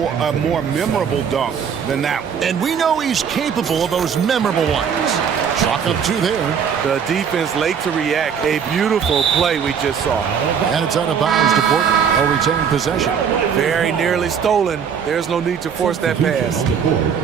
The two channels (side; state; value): left; quieter; 7.2 dB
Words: a more memorable dunk than that one. And we know he's capable of those memorable ones. Chalk up 2 there. The defense late to react. A beautiful play we just saw. And it's out of bounds to Portland. A retained possession. Very nearly stolen. There's no need to force that pass.